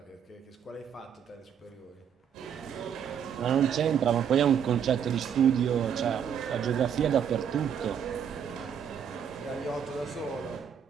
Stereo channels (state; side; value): quieter; left; 8.2 dB